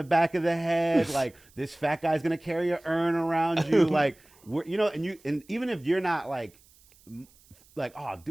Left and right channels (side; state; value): right; noise; hiss, 29 dB below the sound